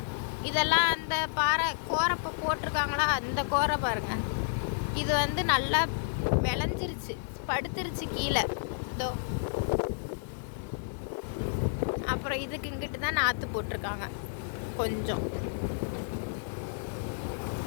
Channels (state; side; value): silent; right; digital silence